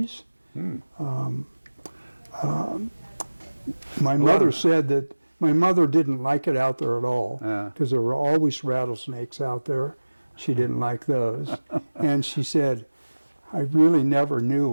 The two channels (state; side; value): inverted; both; correlation -1.00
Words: My mother said that my mother didn't like it out there at all because there were always rattlesnakes out there. She didn't like those. And she said, I really never knew